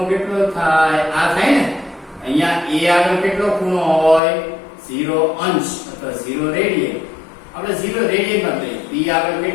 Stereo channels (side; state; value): right; drops out; at 4.2 s